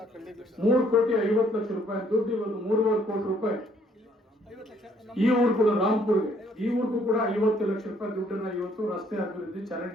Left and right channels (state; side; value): normal; both; correlation 0.65